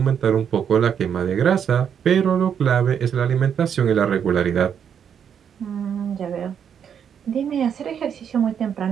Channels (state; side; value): quieter; left; 8.0 dB